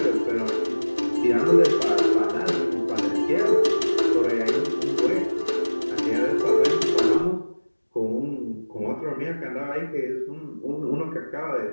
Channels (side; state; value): both; inverted; correlation -1.00